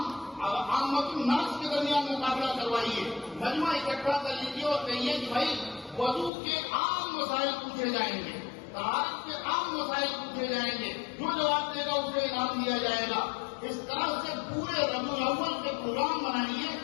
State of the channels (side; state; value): right; drops out; at 6.3 s